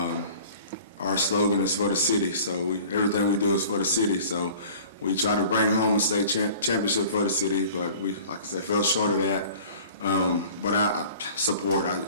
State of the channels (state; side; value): inverted; both; correlation -0.45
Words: Our slogan is for the city, so everything we do is for the city. So we try to bring home a state championship for the city, but we, like I said, fell short of that. But I support.